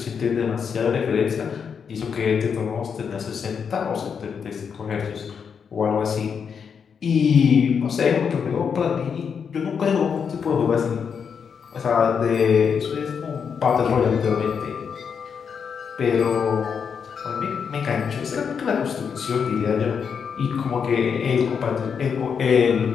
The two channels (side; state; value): right; quieter; 6.6 dB